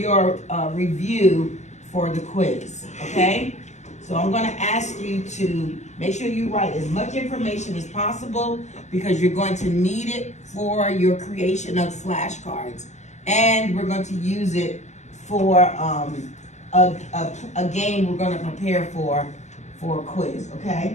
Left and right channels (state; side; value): late; right; 0.33 ms